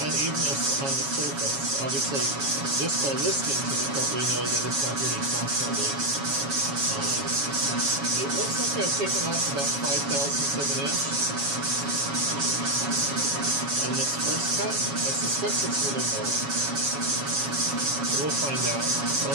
unevenness on the surface. Obviously, just by listening to the cut, we know that it's not hitting constantly. It looks like I've taken off about 5/1000 of an inch on this first cut. I suspect it's a little more. We'll find out.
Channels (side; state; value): left; late; 7.2 ms